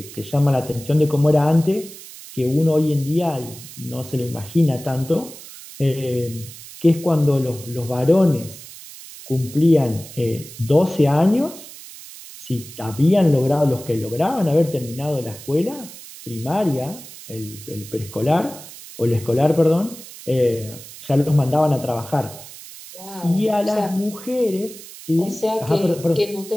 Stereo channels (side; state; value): right; noise; hiss, 16 dB below the sound